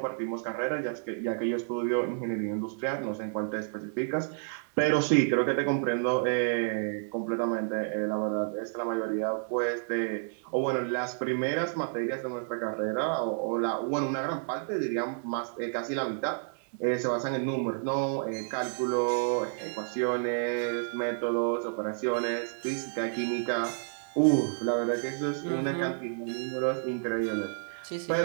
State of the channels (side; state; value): left; silent; digital silence